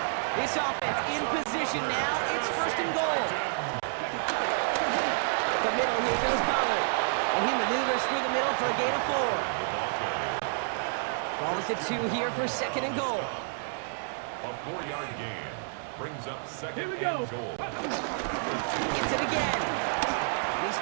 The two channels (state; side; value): silent; left; digital silence